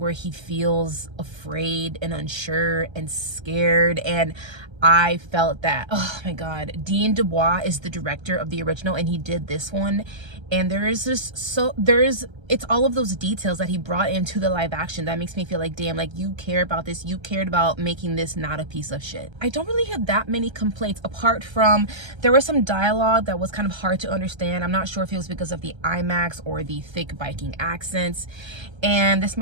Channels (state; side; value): late; left; 1.3 ms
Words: he feels afraid and unsure and scared, and I felt that. Oh my god, Dean Dubois is the director of the original, and he did this one, and it's all of those details that he brought into the live action that makes me feel like, damn, like you care about this, you cared about making this not a piece of shit. I don't really have that many complaints, apart from there was some dialogue that was kind of hard to understand. I'm not sure if it was because of the IMAX or the thick Viking accents. And this